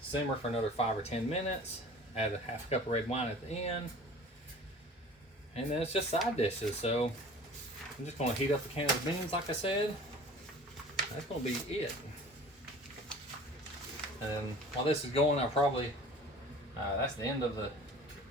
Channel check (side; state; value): both; normal; correlation 0.44